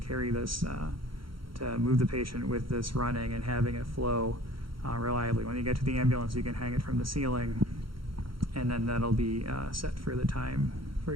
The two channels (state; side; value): late; left; 0.74 ms